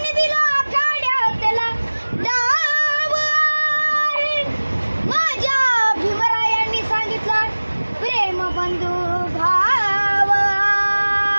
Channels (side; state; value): both; inverted; correlation -1.00